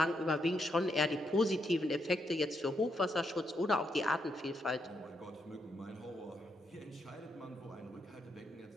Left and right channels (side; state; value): both; normal; correlation 0.79